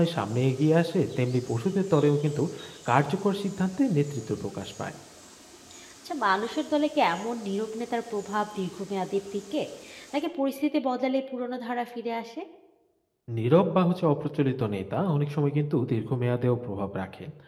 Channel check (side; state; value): both; identical; correlation 1.00